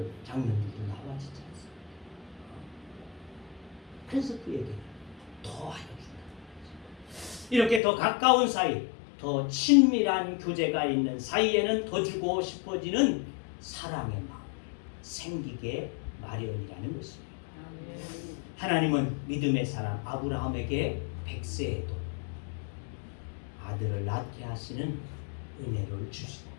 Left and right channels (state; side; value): drops out; right; at 7.8 s